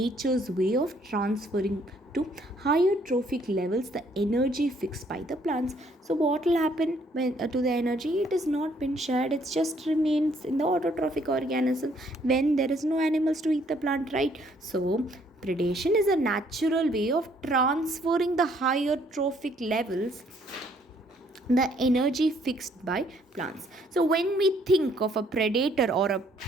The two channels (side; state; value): both; normal; correlation 0.65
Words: way of transferring to higher trophic levels the energy fixed by the plants. So what will happen when to the energy? It has not been shared. It just remains in the autotrophic organism when there is no animals to eat the plant, right? So predation is a natural way of transferring the higher trophic levels the energy fixed by plants. So when we think of a predator